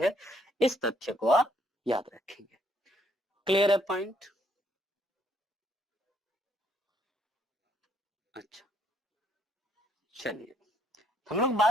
इस तथ्य को आप याद रखेंगे। क्लियर है पॉइंट? अच्छा, चलिए हम लोग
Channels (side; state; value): both; normal; correlation 0.69